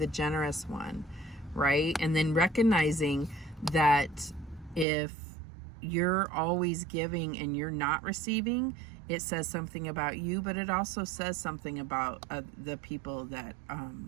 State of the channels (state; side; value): drops out; left; at 4.9 s